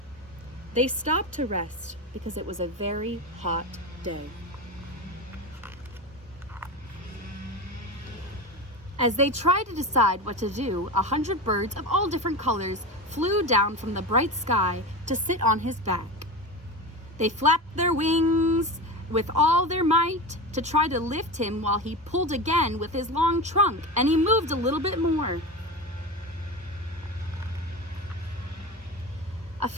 They stopped to rest because it was a very hot day. As they tried to decide what to do, 100 birds of all different colors flew down from the bright sky to sit on his back. They flapped their wings with all their might to try to lift him while he pulled again with his long trunk, and he moved a little bit more. A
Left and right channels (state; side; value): normal; both; correlation 0.25